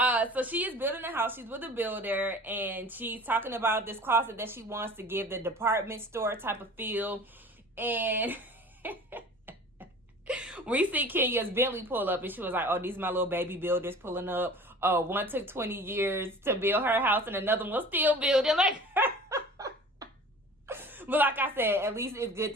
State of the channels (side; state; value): both; normal; correlation 0.42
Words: so she is building a house. She's with a builder, and she's talking about this closet that she wants to give the department store type of feel, and we see Kenya's Bentley pull up, and she was like, "Oh, these are my little baby builders pulling up. One took 20 years to build her house, and another one still building." Like. But like I said, at least it's good